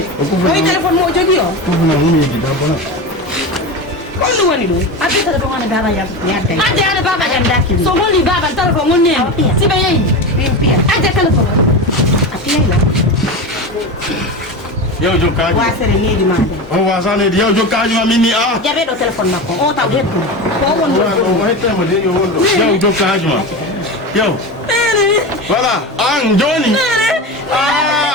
oyi téléphone mo o jogui o kofuna humiji da bona on ɗum woni ɗum adde téléphone on e baba yam yadda adde baba yam dakki so holli baba téléphone on ne siɓe yeyi min piya adde téléphone a piyayla yaw jokkaji wasere needi ma nde o wasanede yaw jokkaji ma min ni a jaɓe ɗo téléphone makko o taw hettu ko won o hettama de yo wonɗo yaw jokkaji ma yaw voilà an joni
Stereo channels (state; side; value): normal; both; correlation 0.23